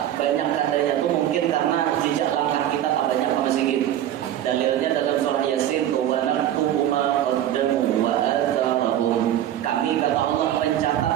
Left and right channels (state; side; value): quieter; left; 11.6 dB